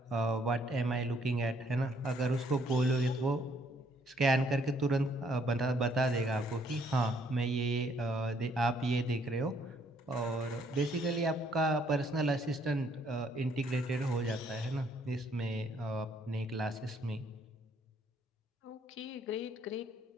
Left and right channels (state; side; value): normal; both; correlation 0.67